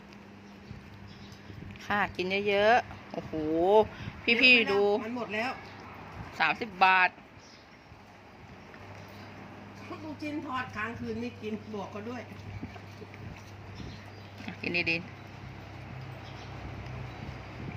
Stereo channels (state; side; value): identical; both; correlation 1.00